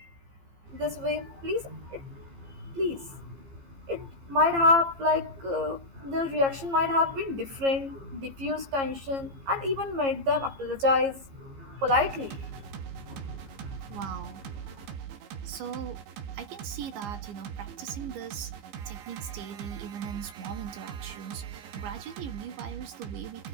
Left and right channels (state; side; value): late; left; 15 ms